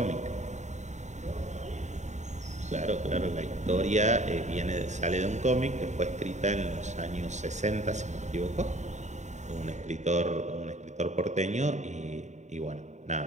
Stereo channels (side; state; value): left; late; 0.34 ms